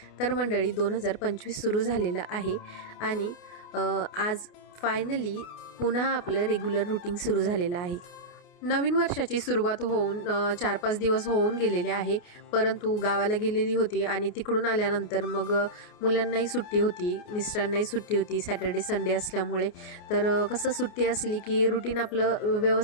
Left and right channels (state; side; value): late; right; 28 ms